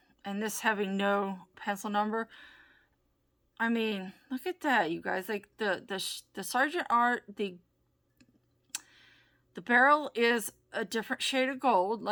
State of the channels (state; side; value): identical; both; correlation 1.00